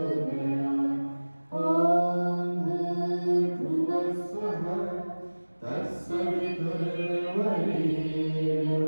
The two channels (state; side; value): inverted; both; correlation -1.00